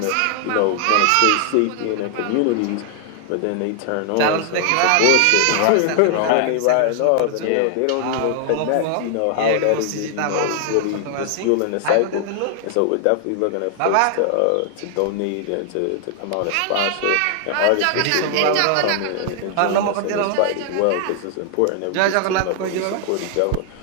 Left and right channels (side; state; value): both; different; correlation 0.00